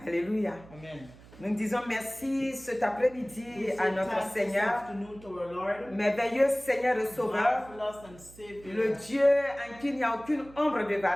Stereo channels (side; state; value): right; noise; hum, 21 dB below the sound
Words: Alléluia. Amen. Nous disons merci cet après-midi We say à notre thanks this Seigneur, afternoon to our Lord, merveilleux Seigneur et Sauveur, marvelous and Savior. le Dieu en qui il n'y a aucune ombre de